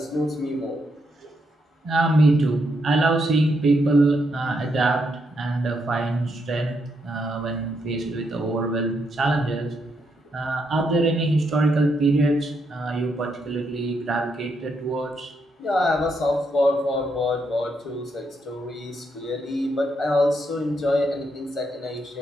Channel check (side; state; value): both; normal; correlation 0.79